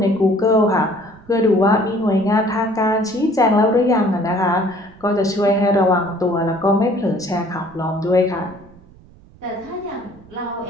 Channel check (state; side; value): noise; right; rumble, 25 dB below the sound